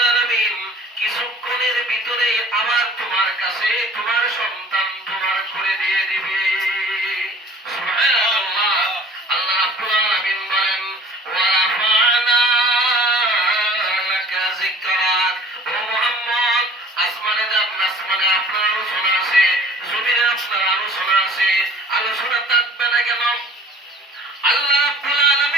আলামিন কিছুক্ষণের ভিতরে আবার তোমার কাছে তোমার সন্তান তোমার করে দিয়ে দিবে। সুবহানাল্লাহ। আল্লাহ রাব্বুল আলামিন বলেন, ওয়া রাফা'না লাকা যিকরাক, ও মুহাম্মদ, আসমানে যান, আসমানে আপনার আলোচনা আছে, জমিনে আপনার আলোচনা আছে, আলোচনা থাকবে না কেন? আল্লাহ রাব্বুল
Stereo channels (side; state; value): both; normal; correlation 0.49